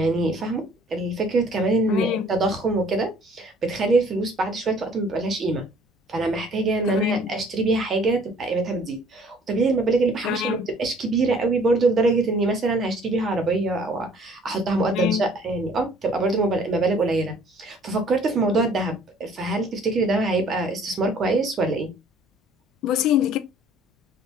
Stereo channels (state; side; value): normal; both; correlation 0.56